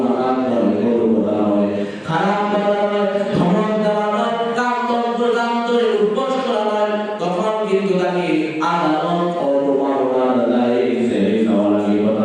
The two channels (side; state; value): both; identical; correlation 1.00